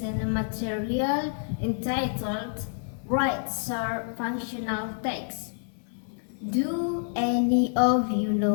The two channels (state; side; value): silent; right; 59 dB below the other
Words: a material entitled Write Short Functional Text. Do any of you